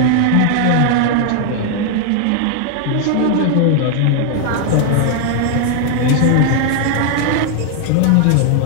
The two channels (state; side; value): different; both; correlation 0.00